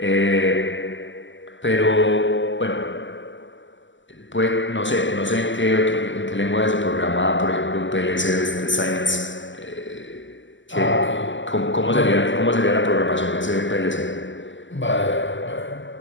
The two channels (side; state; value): right; late; 0.54 ms